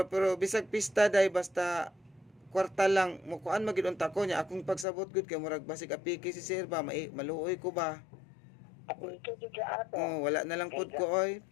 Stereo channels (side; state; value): right; drops out; at 4.9 s